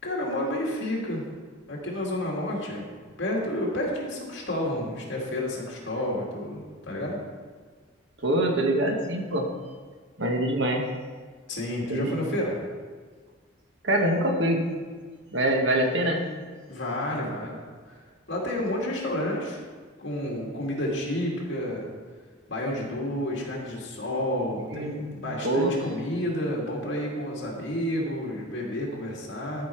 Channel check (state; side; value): normal; both; correlation 0.22